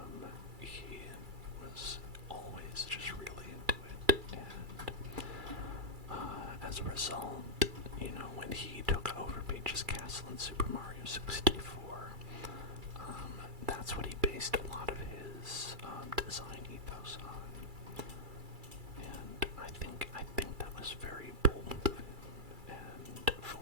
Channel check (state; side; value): late; left; 2.3 ms